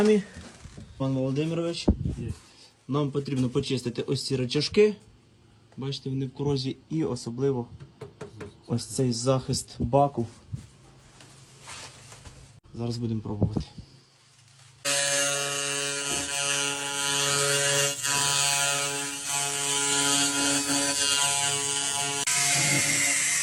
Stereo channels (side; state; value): both; identical; correlation 1.00